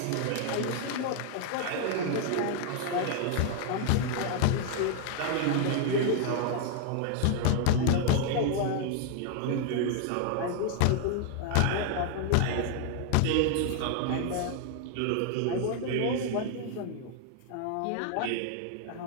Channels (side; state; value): both; different; correlation 0.00